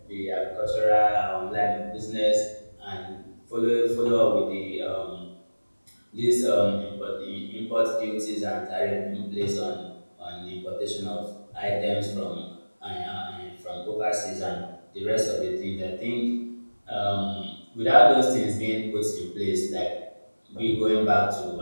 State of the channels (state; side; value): inverted; both; correlation -1.00